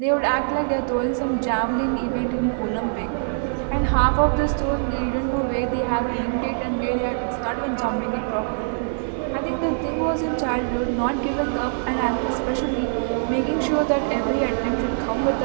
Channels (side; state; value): left; silent; 63 dB below the other